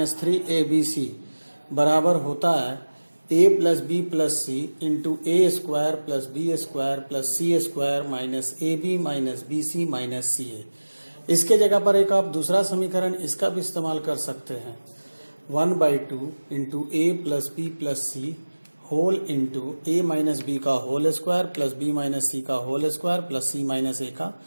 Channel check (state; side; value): inverted; both; correlation -1.00